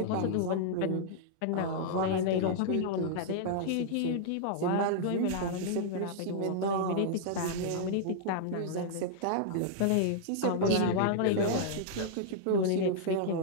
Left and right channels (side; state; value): both; different; correlation -0.02